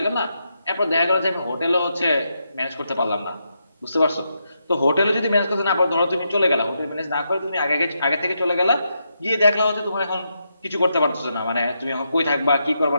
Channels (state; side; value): inverted; both; correlation -0.82